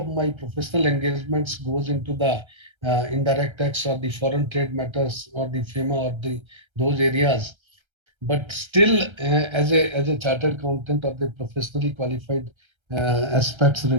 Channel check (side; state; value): left; late; 1.3 ms